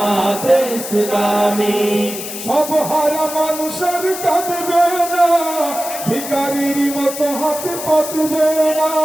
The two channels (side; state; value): left; noise; hiss, 8 dB below the sound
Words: ইসলামী। সব হারা মানুষের কাঁদবে না, ভিখারির মতো হাতে পাতবে না,